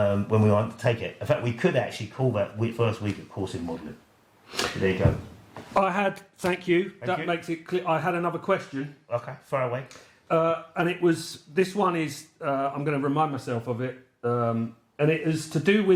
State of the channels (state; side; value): identical; both; correlation 1.00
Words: we undertake it. In fact, we could actually call that first week of course in modelling. There you go. Thank you. Thank you. Makes it clear. I had another question. Okay, far away. And this one is, I'm going to remind myself of it, and it is to do